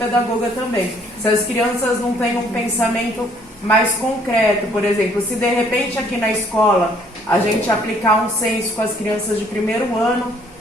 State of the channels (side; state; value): both; normal; correlation 0.62